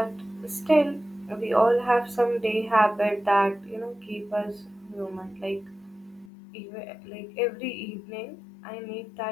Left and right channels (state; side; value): drops out; right; at 6.3 s